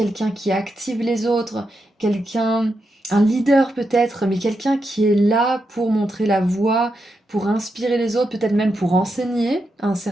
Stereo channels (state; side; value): normal; both; correlation 0.85